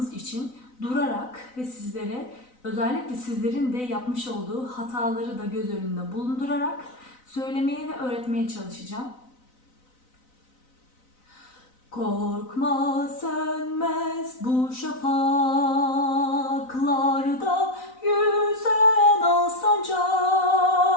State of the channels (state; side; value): late; right; 4.0 ms